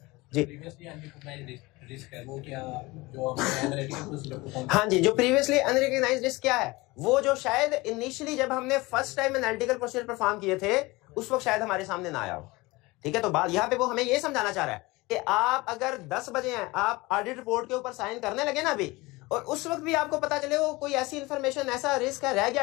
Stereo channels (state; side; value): quieter; right; 22.3 dB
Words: जी। हाँ जी, जो प्रीवियसली अनरिकॉग्नाइज्ड रिस्क क्या है, वो जो शायद इनिशियली जब हमने first time analytical procedure perform किए थे उस वक्त शायद हमारे सामने ना आया हो, ठीक है। तो बात यहाँ पे वो हमें ये समझाना चाह रहा है कि आप अगर 10 बजे हैं, आप ऑडिट रिपोर्ट के ऊपर साइन करने लगे ना अभी, और उस वक्त भी आपको पता चले वो कोई ऐसी इंफॉर्मेशन, ऐसा रिस्क है रह